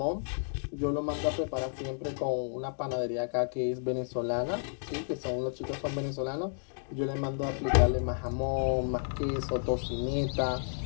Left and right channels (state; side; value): silent; right; digital silence